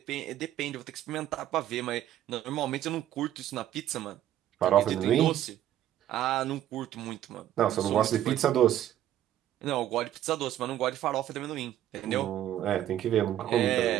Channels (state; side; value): quieter; left; 12.0 dB